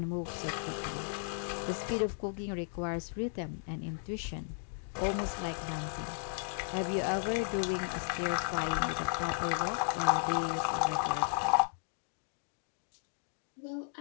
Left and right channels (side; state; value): right; silent; digital silence